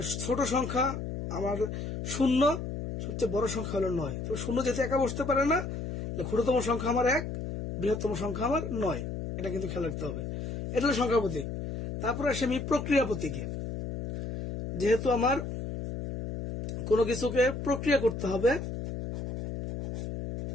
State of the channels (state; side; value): noise; left; hum, 5 dB below the sound